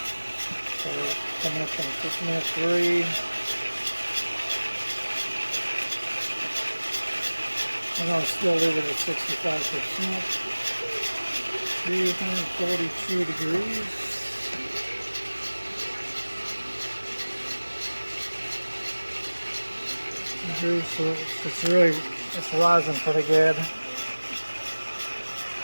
So we're coming up in minute 3. I'm going to still leave it at 65%. 342 degrees. So it's rising pretty good.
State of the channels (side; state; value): both; inverted; correlation -1.00